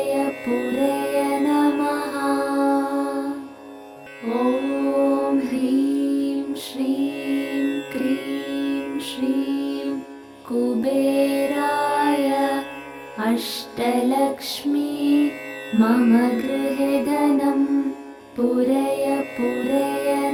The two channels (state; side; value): identical; both; correlation 1.00